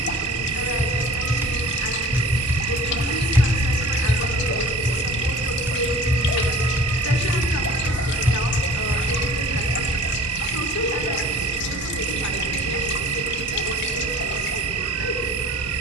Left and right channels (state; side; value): normal; both; correlation 0.45